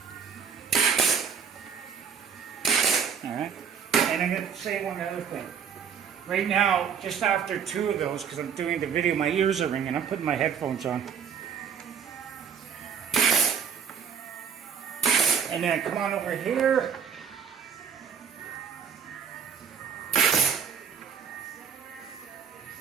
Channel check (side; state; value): left; quieter; 7.1 dB